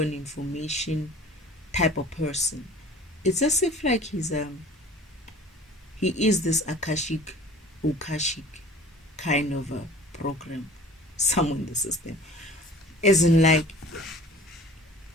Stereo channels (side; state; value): both; normal; correlation 0.45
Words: information type of person. It's as if like he is this Akashic kind of a program somewhere in the system. Isn't like